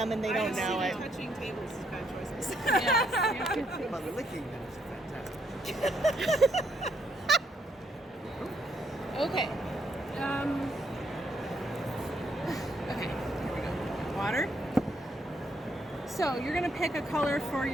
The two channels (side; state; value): both; normal; correlation 0.74